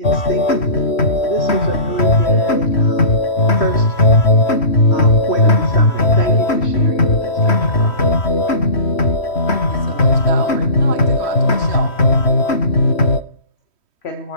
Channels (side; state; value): right; late; 3.1 ms